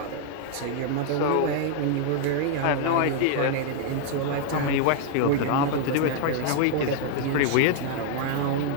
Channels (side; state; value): both; different; correlation -0.01